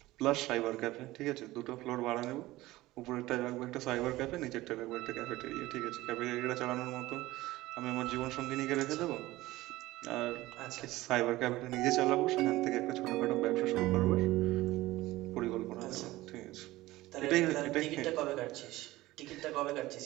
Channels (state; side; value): quieter; left; 18.0 dB